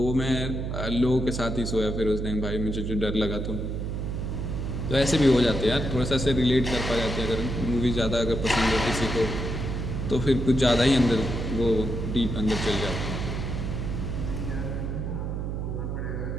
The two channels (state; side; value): noise; right; hum, 3 dB below the sound